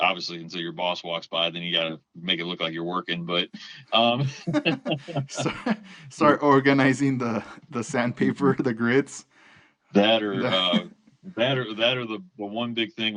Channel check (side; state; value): both; identical; correlation 1.00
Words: until your boss walks by, then you got to make it look like you're working. But um, start, start organizing the sandpaper, the grids. that or The, the one big thing